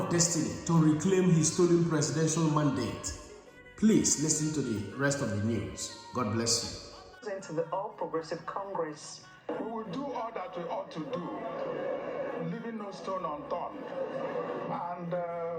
destiny, to reclaim his stolen presidential mandate. Please listen to the rest of the news. God bless you. Into the All Progressive Congress. We will do all that we ought to do, leaving no stone unturned. And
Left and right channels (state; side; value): identical; both; correlation 1.00